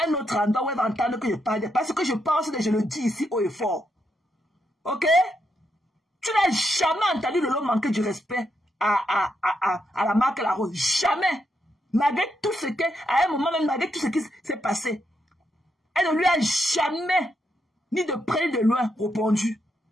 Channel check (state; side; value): normal; both; correlation 0.81